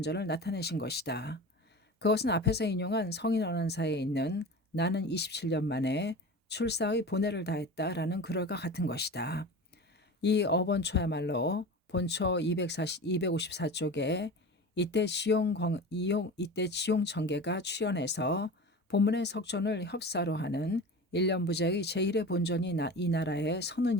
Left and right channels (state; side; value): normal; both; correlation 0.32